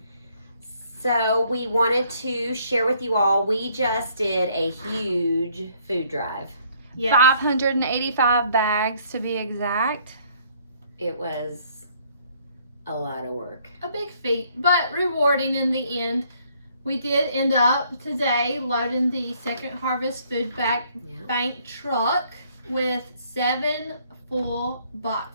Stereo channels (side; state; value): both; inverted; correlation -0.64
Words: So we wanted to share with you all, we just did a huge food drive. Yes. 585 bags to be exact. It was a lot of work. A big feat, but rewarding in the end. We did end up today loading the Second Harvest Food Bank truck with 7 full